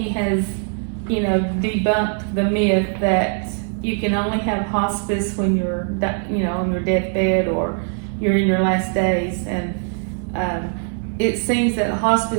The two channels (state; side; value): silent; left; 55 dB below the other